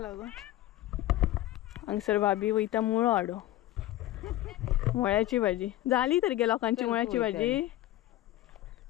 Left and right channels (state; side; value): quieter; right; 15.1 dB